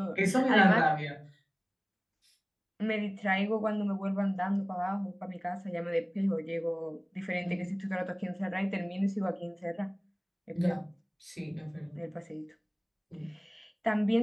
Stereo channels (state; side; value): identical; both; correlation 1.00